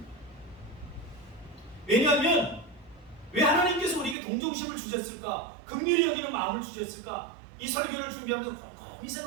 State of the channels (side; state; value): left; drops out; at 4.2 s